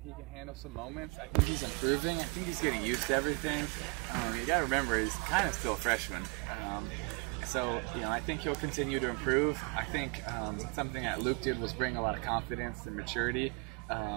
he can handle some moments. I think he's improving. I think he's getting used to everything. You got to remember, he's kind of still a freshman. So, I think he'll continue to improve. I think something that Luke did was bring a lot of confidence and maturity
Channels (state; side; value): quieter; left; 32.6 dB